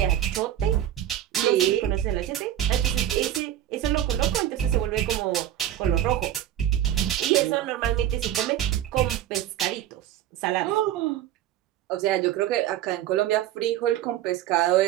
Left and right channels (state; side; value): quieter; left; 11.9 dB